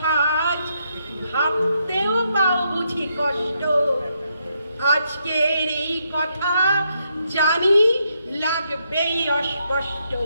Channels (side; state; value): both; inverted; correlation -0.78